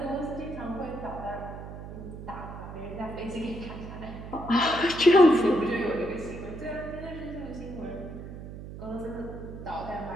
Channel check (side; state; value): right; noise; hum, 11 dB below the sound